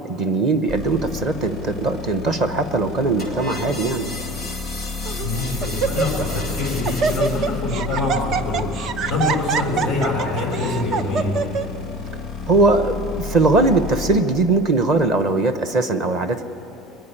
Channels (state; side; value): normal; both; correlation 0.38